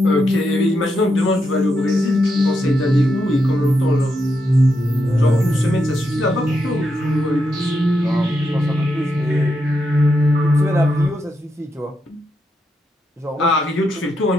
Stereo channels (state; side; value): normal; both; correlation 0.83